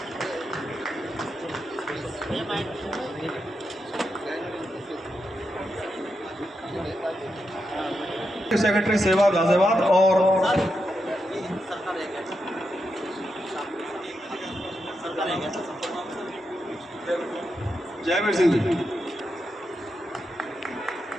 सेक्रेटरी सेवा गाजियाबाद और जयवीर सिंह जी।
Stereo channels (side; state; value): both; normal; correlation 0.85